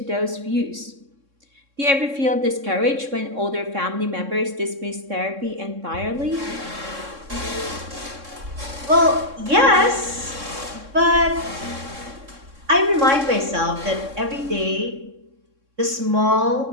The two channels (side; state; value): left; late; 3.6 ms